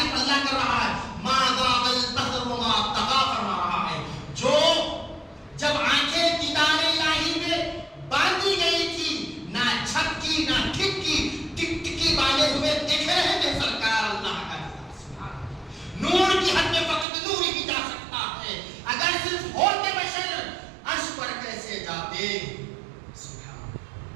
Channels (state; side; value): drops out; left; at 17.1 s